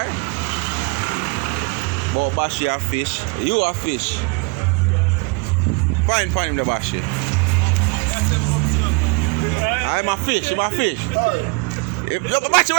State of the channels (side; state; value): left; quieter; 28.6 dB